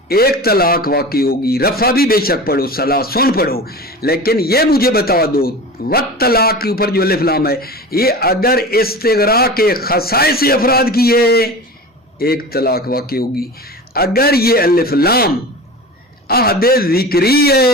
ایک طلاق واقع ہوگی. رفع بھی بے شک پڑھو، ثلاثن پڑھو، لیکن یہ مجھے بتا دو والطلاق کے اوپر جو الف لام ہے یہ اگر استغراق کے خصائص افراد کی ہے ایک طلاق واقع ہوگی. اگر یہ الف لام عہد ذکری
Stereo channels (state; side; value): normal; both; correlation 0.33